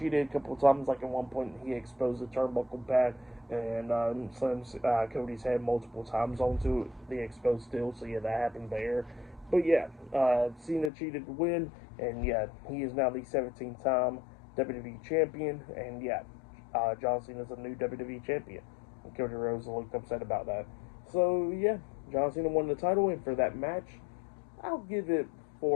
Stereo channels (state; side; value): drops out; right; at 10.9 s